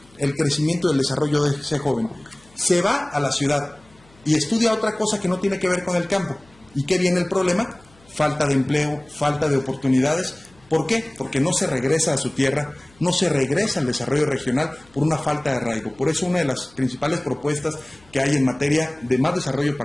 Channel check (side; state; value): left; noise; hum, 29 dB below the sound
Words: El crecimiento y el desarrollo de ese joven. Se va a la ciudad y estudia otra cosa que no tiene que ver con el campo. ¿Y qué viene el problema? Falta de empleo, falta de oportunidades. ¿Por qué? Porque no se regresa a su tierra, no se regresa al desarrollo regional por una falta de arraigo. Por eso una de las principales propuestas que hay en materia de más desarrollo